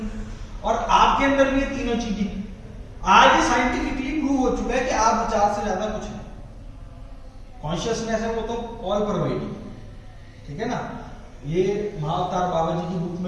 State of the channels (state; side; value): identical; both; correlation 1.00